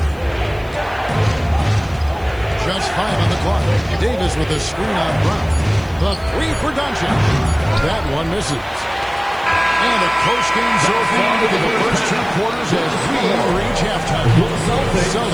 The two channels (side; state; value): right; noise; hiss, 28 dB below the sound